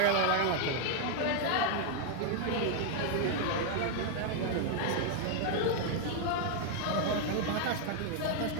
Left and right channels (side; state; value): both; different; correlation 0.00